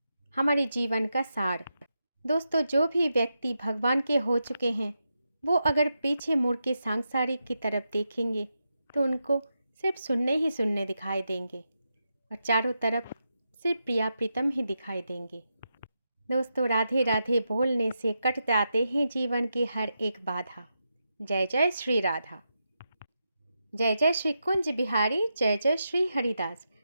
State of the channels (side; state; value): both; inverted; correlation -0.86